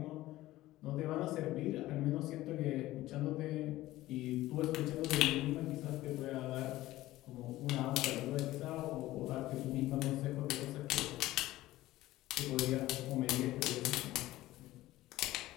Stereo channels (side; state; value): right; quieter; 16.5 dB